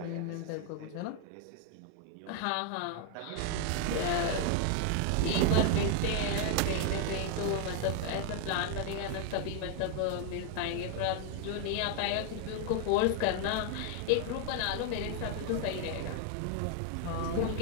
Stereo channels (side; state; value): both; different; correlation 0.00